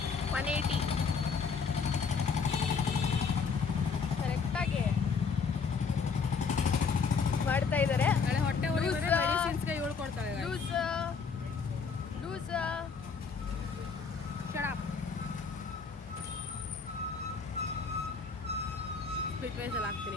180 ಕರೆಕ್ಟಾಗಿ ಮಾಡ್ತಾ ಇದ್ದಾರೆ. ನಾಳೆ ಹೊಟ್ಟೆ ಮೆಡಿಸಿನ್ಸ್ಗೆ ಇವಳು ಕೊಡ್ತಾಳೆ. ಲೂಸ್ ಶರಾಬ್ ಸ್ಪಿಟ್ ವೈಸಲ್ಲಿ ಹಾಕ್ತೀನಿ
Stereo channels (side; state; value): right; quieter; 5.4 dB